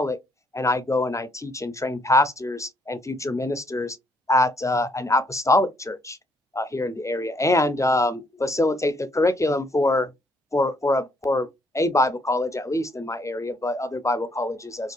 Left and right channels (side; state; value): both; normal; correlation 0.69